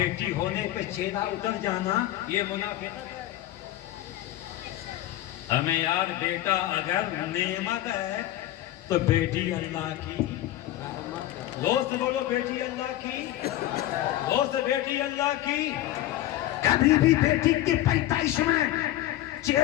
ہونے پہ چہرہ اتر جانا, یہ منافقت ہے. ہمیں یار بیٹا اگر نعمت ہے تو بیٹی اللہ کی. دوست بولو بیٹی اللہ کی, دوست بیٹی اللہ کی. کبھی بھی بیٹی کی پیدائش میں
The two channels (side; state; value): right; quieter; 14.3 dB